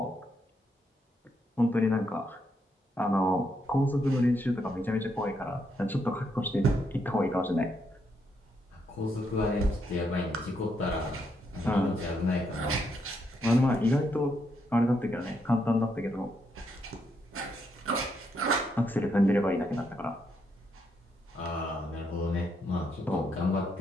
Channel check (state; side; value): normal; both; correlation 0.77